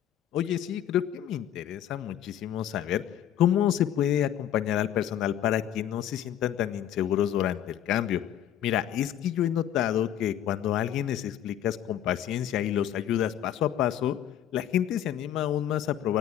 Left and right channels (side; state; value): right; quieter; 10.7 dB